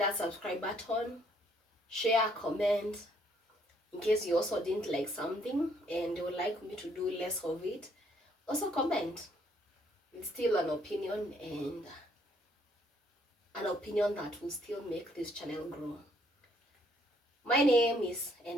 subscribe button, share, comment. In case you also didn't like something and you would like me to do less of it, also comment. It's still an opinion, and an opinion that will still make this channel grow. My name is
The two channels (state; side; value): normal; both; correlation 0.67